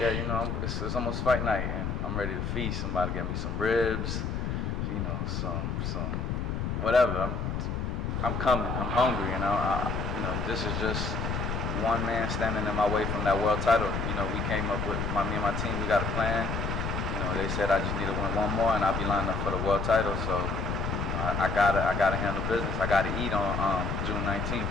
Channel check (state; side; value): noise; left; rumble, 2 dB below the sound